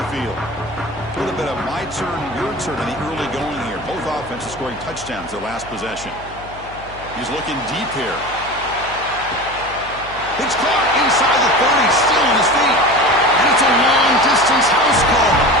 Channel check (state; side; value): noise; left; hum, 18 dB below the sound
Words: field. A little bit of my turn, your turn in the early going here. Both offenses scoring touchdowns their last possession. He's looking deep here. It's caught inside the 30, still on his feet. And it's a long-distance house call.